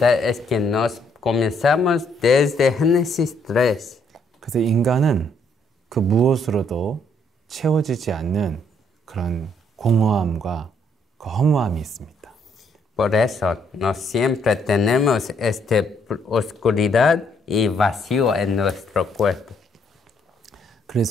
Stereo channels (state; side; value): normal; both; correlation 0.70